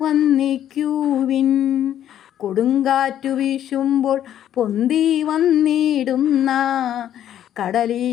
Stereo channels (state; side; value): quieter; right; 10.9 dB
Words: വന്ദിക്കുവിൻ. കൊടുങ്കാറ്റു വീശുമ്പോൾ പൊന്തി വന്നിടുന്ന